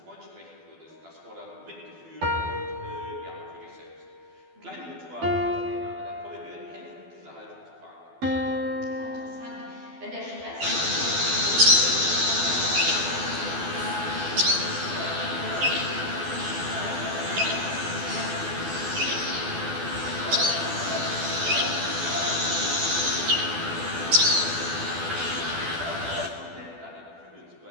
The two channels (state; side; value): late; left; 12 ms